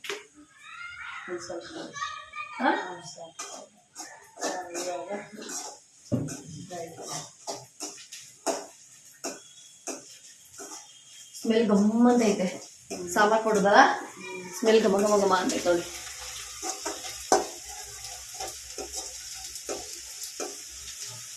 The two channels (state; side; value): identical; both; correlation 1.00